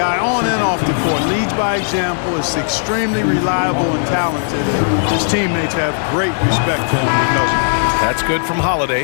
on and off the court. Leads by example, is extremely reliable and talented. And his teammates have great respect for him because of it. That's good from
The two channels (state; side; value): silent; right; digital silence